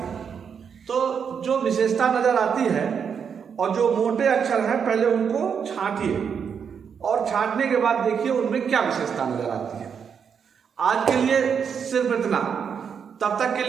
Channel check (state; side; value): quieter; left; 7.0 dB